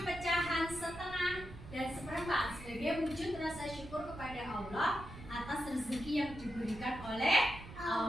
pecahan setengah dan seperempat sebagai wujud rasa syukur kepada Allah atas rezeki yang diberikan oleh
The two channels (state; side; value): noise; right; rumble, 14 dB below the sound